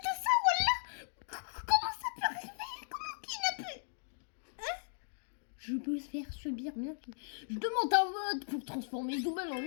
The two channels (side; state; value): right; silent; digital silence